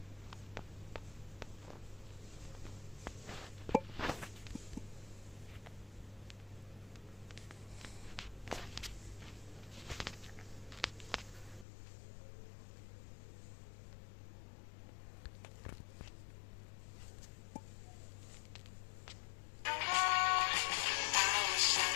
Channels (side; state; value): right; drops out; at 11.7 s